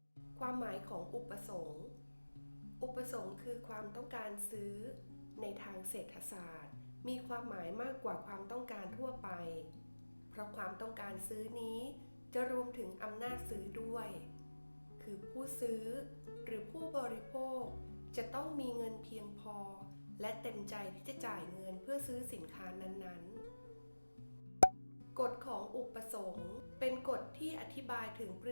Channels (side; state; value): both; inverted; correlation -1.00